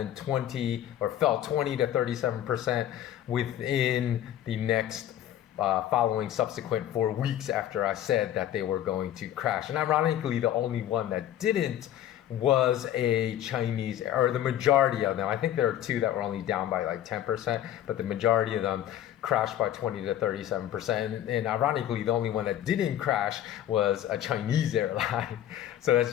20 or fell 20 to 37% within the next following subsequent 4 weeks after I said that they were going to crash. And ironically, the only one that didn't was a Chinese, or the majority of them. I think there are two that were only down by like 10%, but the majority of them crashed by 20 to 37%. And ironically, the only one that didn't crash was a Chinese airline. So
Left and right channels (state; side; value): quieter; right; 11.7 dB